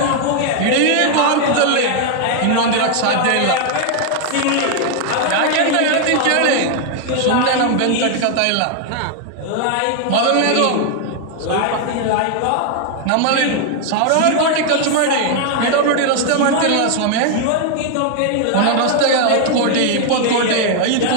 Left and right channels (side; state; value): both; different; correlation 0.00